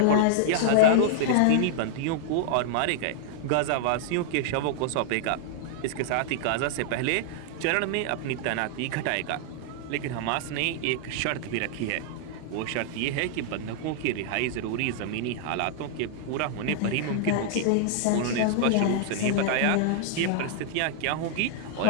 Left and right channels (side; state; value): both; different; correlation -0.01